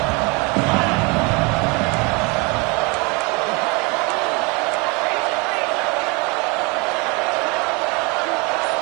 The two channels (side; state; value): left; quieter; 27.3 dB